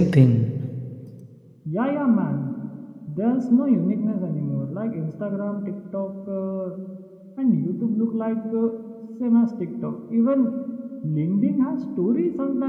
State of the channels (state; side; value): identical; both; correlation 1.00